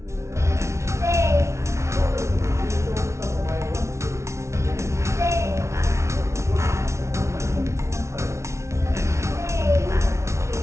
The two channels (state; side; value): late; left; 0.13 ms